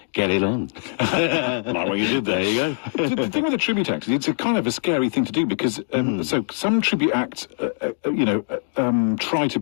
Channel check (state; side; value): silent; right; digital silence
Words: get it on. Like what you did there. There you go. The thing with a tribute act is it's a kind of a scary thing to do because so some tribute acts, try to